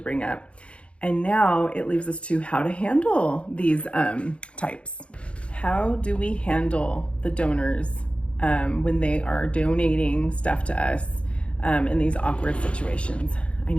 up. And now it leaves us to how to handle these types. How do we handle the donors when they are donating stuff to us in these awkward situations? I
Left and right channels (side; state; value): right; late; 0.060 ms